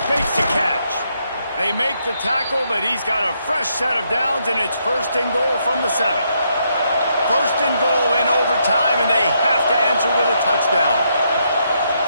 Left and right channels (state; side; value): inverted; both; correlation -0.76